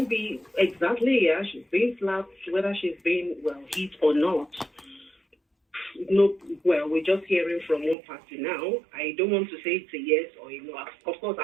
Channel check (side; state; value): left; drops out; at 8.0 s